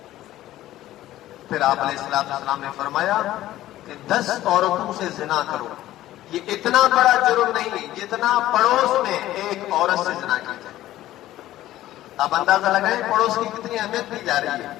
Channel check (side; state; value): right; quieter; 14.5 dB